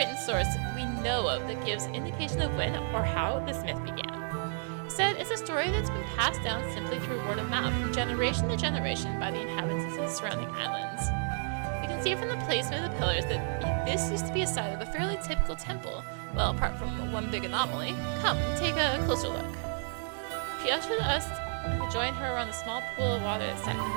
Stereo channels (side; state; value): left; silent; 56 dB below the other